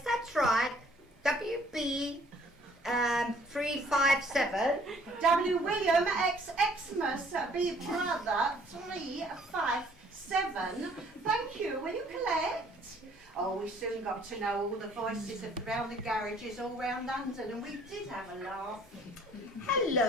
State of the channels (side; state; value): both; normal; correlation 0.59